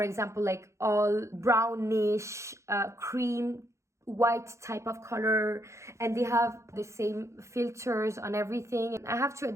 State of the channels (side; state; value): left; late; 0.14 ms